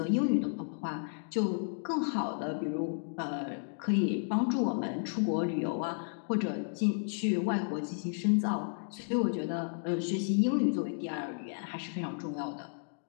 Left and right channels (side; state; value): right; silent; digital silence